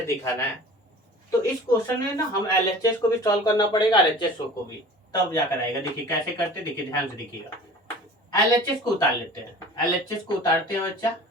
दिखाना है, तो इस क्वेश्चन में ना हम LHS को भी सॉल्व करना पड़ेगा, RHS को भी, तब जाकर आएगा। देखिए कैसे करते, देखिए ध्यान से देखिएगा। LHS को उतार लेते हैं, LHS को उतारते हैं बच्चा,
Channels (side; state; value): both; normal; correlation 0.42